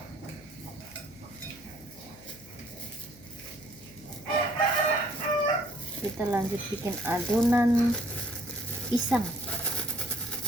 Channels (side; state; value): left; noise; hum, 24 dB below the sound